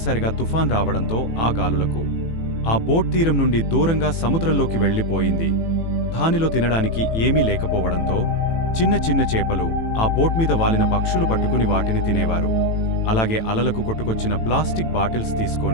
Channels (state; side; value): late; right; 18 ms